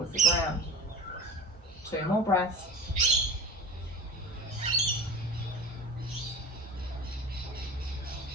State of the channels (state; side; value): normal; both; correlation 0.36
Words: the ground. 2 more breaths.